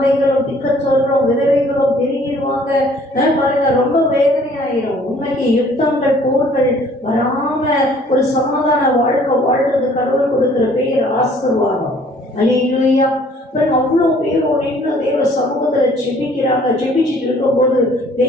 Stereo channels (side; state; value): both; normal; correlation 0.57